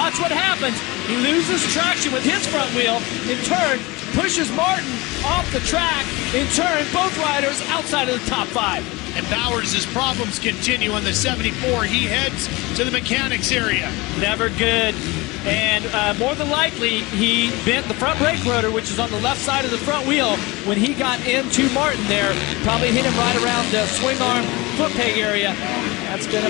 what happens. He loses traction with his front wheel. In turn, pushes Martin off the track. In turn, both riders outside of the top 5. And Bowers' problems continue on the 74. He heads to the mechanics area. Never good. And more than likely, he bent the front brake rotor, which is on the left side of the front wheel, when he got into Martin there. Probably hit him right around the swing arm foot peg area. That's going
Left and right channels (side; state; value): right; quieter; 23.2 dB